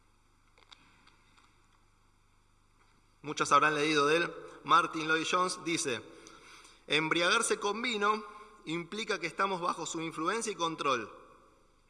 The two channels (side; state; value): both; identical; correlation 1.00